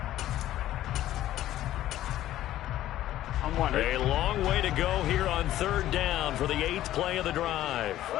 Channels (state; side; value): quieter; right; 13.6 dB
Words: A long way to go here on 3rd down for the 8th play of the drive.